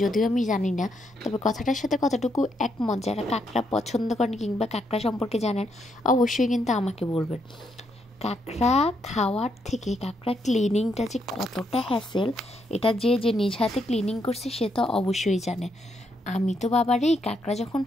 যদিও আমি জানি না, তবে কথাটার সাথে কতটুকু একমত যারা কাঁকড়া পছন্দ করেন কিংবা কাঁকড়া সম্পর্কে জানেন অবশ্যই কিন্তু আমাকে বলবেন। কাঁকড়া খাওয়ার থেকে কাঁকড়া ক্লিনিংটা যে কতটা হ্যাসেল, এটা যে যে নিজ হাতে ক্লিনিং করছে সে তো অবশ্যই জানে। আমি তো বাবারে কাঁকড়া যখন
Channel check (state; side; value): normal; both; correlation 0.77